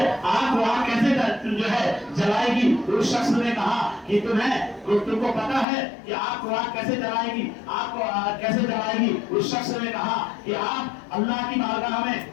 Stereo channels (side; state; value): right; drops out; at 5.7 s